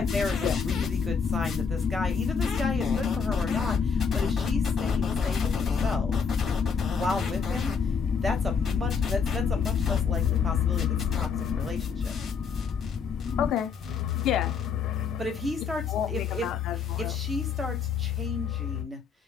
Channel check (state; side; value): quieter; right; 5.9 dB